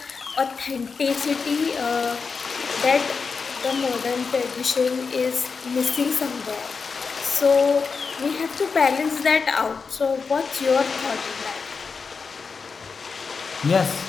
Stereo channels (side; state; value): right; quieter; 5.1 dB